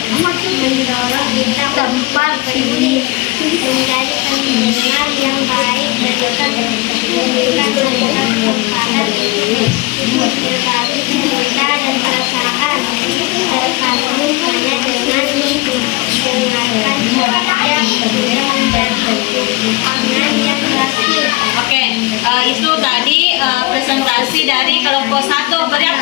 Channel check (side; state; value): right; quieter; 23.3 dB